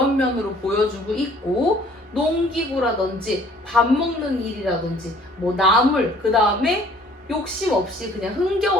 면으로 보여주고 있고, 농기구라든지 밥 먹는 일이라든지 뭐 나물, 그 다음에 욕심 없이 그냥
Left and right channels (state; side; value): normal; both; correlation 0.55